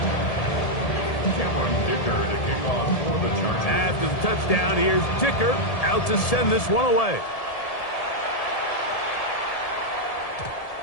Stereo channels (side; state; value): right; late; 1.7 ms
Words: After the touchdown, here's Dicker out to send this one away.